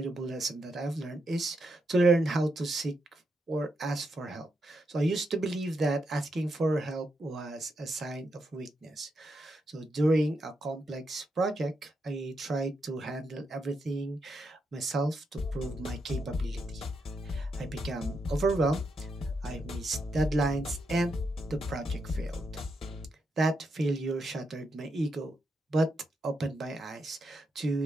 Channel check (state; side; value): normal; both; correlation 0.82